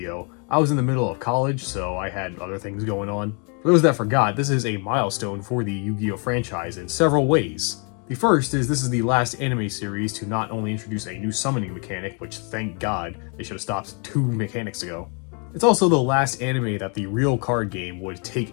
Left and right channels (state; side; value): quieter; right; 37.0 dB